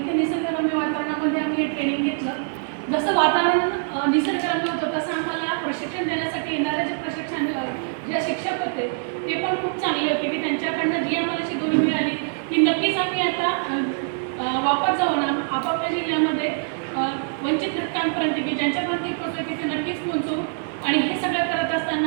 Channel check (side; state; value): left; silent; digital silence